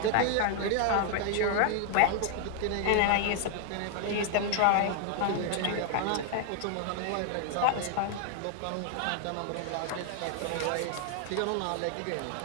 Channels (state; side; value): different; both; correlation 0.00